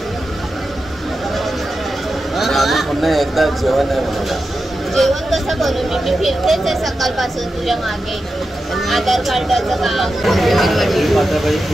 पुन्हा एकदा जेवण आहे मला. जेवण कसं करू मी फिरतेच आहे सकाळपासून तुझ्या मागे. आधार कार्डाचं काम पण करत आहे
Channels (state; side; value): normal; both; correlation 0.90